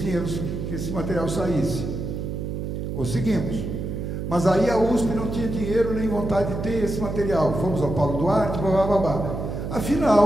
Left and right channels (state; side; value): noise; right; hum, 4 dB below the sound